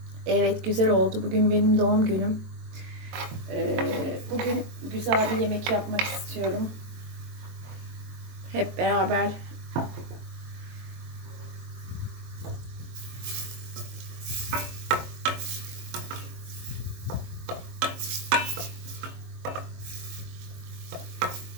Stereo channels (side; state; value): left; late; 22 ms